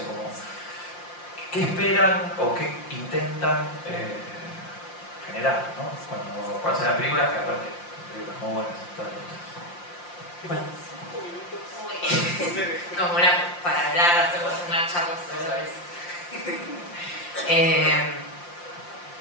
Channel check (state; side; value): late; right; 5.7 ms